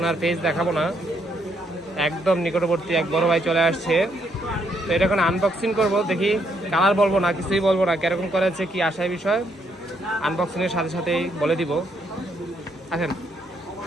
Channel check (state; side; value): normal; both; correlation 0.73